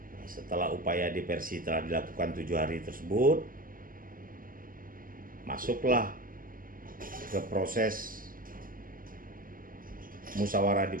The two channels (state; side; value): late; left; 0.41 ms